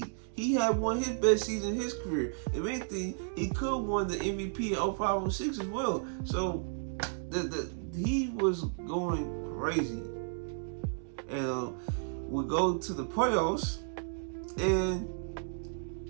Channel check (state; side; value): silent; left; digital silence